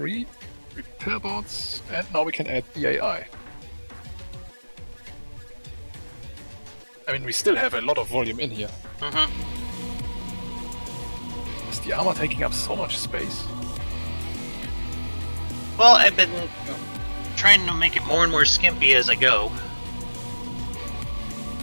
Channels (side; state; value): both; inverted; correlation -1.00